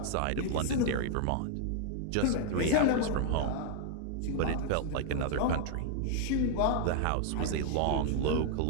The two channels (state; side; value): different; both; correlation 0.00